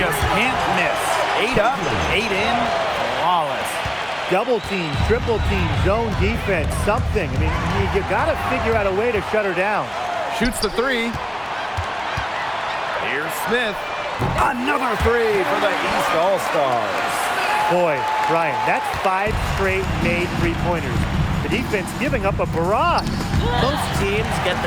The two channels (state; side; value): identical; both; correlation 1.00